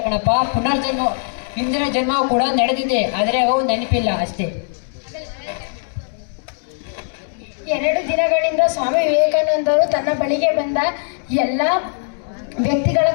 ಕಣಪ್ಪ, ಪುನರ್ಜನ್ಮ, ಹಿಂದಿನ ಜನ್ಮ ಕೂಡ ನಡೆದಿದೆ, ಆದ್ರೆ ಅವು ನೆನಪಿಲ್ಲ ಅಷ್ಟೇ. 2 ದಿನಗಳಿಂದ ಸ್ವಾಮಿ ವಿವೇಕಾನಂದರು ತನ್ನ ಬಳಿಗೆ ಬಂದ ಎಲ್ಲ ವ್ಯಕ್ತಿಗಳ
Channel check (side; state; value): right; silent; digital silence